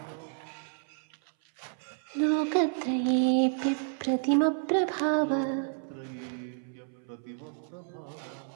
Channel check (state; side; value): silent; left; 57 dB below the other